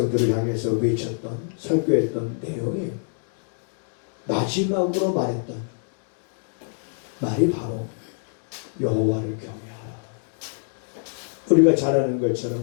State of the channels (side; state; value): right; silent; digital silence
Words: 향해서 외쳤던, 설교했던 내용이 마지막으로 말했던 말이 바로 여호와를 경외하라. 우리가 잘 아는